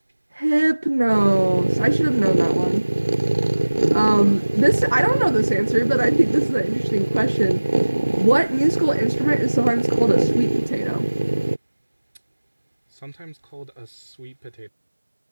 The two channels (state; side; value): inverted; both; correlation -1.00